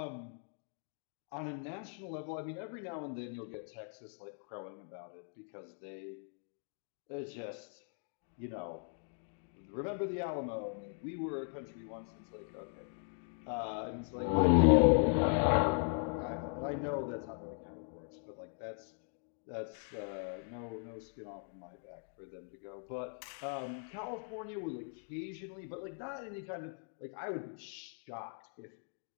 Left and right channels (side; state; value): right; silent; 52 dB below the other